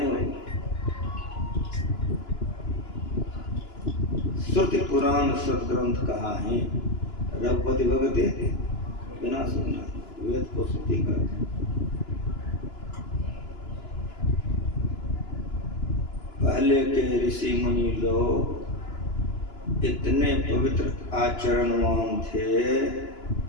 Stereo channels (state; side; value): late; right; 2.9 ms